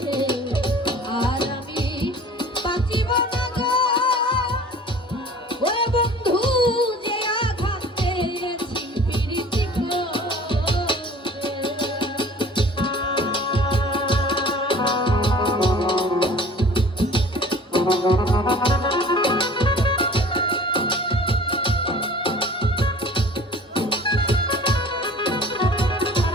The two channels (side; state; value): both; normal; correlation 0.46